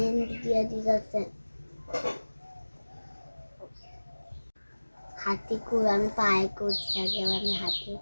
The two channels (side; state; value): both; inverted; correlation -1.00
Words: দিয়ে দিয়েছে। হাতে করে আমি পায়ে করছি, আগে আমি হাতে